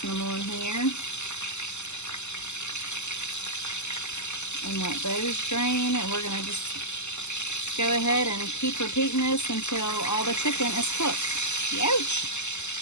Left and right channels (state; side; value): late; right; 0.83 ms